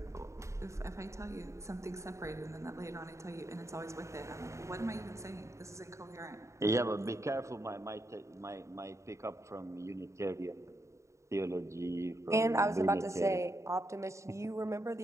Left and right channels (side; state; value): left; late; 0.14 ms